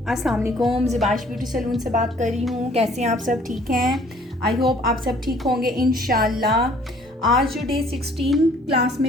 अस्सलाम वालेकुम, ज़िबाश beauty salon से बात कर रही हूँ। कैसे हैं आप सब? ठीक हैं? आई होप आप सब ठीक होंगे इंशाल्लाह। आज जो डे 16 क्लास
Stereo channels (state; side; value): normal; both; correlation 0.57